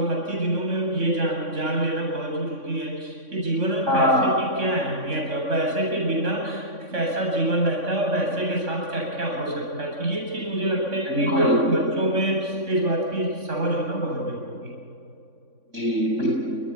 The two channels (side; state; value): left; late; 3.6 ms